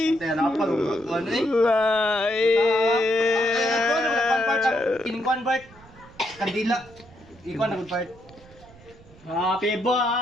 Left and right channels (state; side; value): noise; right; rumble, 24 dB below the sound